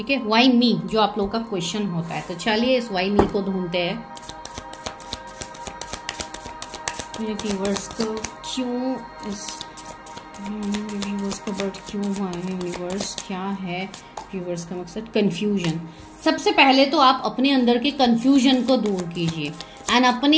है, वाई मी, जो आप लोगों का क्वेश्चन होता है। तो चलिए इस वाई मी को ढूंढते हैं। मेरे व्यूअर्स को क्यों इस व्यूअर्स का बर्थ क्यों हुआ है, यूनिवर्स क्या है व्यूअर्स का मकसद, कंफ्यूजन। सबसे पहले तो आप अपने अंदर के कंफ्यूजन को दूर कीजिए एंड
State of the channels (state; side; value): identical; both; correlation 1.00